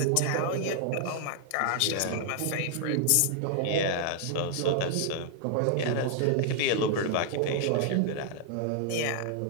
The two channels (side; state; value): both; different; correlation -0.01